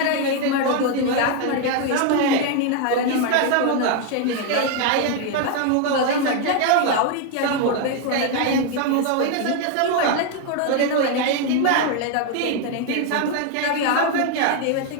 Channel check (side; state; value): both; different; correlation 0.01